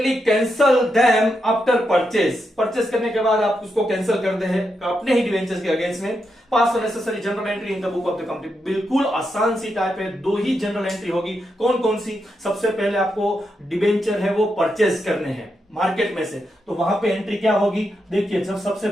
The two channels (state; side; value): normal; both; correlation 0.84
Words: cancel them after purchase. Purchase करने के बाद आप उसको कैंसिल कर दे हैं अपने ही डिबेंचर्स के अगेंस्ट में। पास necessary general entry in the book of the company. बिल्कुल आसान सी टाइप है, दो ही जनरल एंट्री होगी। कौन कौन सी? सबसे पहले आपको डिबेंचर है वो परचेज करने हैं मार्केट में से, तो वहां पे एंट्री क्या होगी? देखिए, जब सबसे